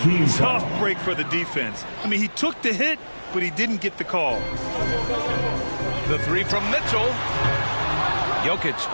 Tough break for the defense. I mean, he took the hit, but he didn't get the call. The 3 from Mitchell. Jokic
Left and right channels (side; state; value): both; inverted; correlation -1.00